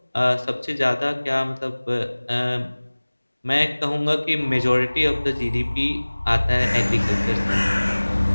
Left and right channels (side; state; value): both; inverted; correlation -1.00